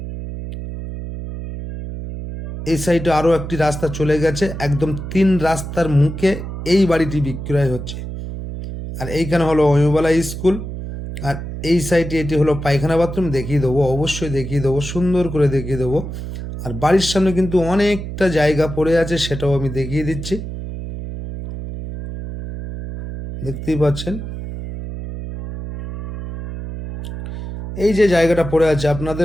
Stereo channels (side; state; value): right; noise; hum, 8 dB below the sound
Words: এই সাইডে আরও একটি রাস্তা চলে গেছে, একদম 3 রাস্তার মুখে এই বাড়িটি বিক্রয় হচ্ছে। আর এইখানে হলো অমিয়বালা স্কুল, আর এই সাইডে এটি হলো পায়খানা বাথরুম। দেখিয়ে দেবো, অবশ্যই দেখিয়ে দেবো, সুন্দর করে দেখিয়ে দেবো। আর বাড়ির সামনে কিন্তু অনেকটা জায়গা পড়ে আছে, সেটাও আমি দেখিয়ে দিচ্ছি। দেখতেই পাচ্ছেন এই যে জায়গাটা পড়ে আছে,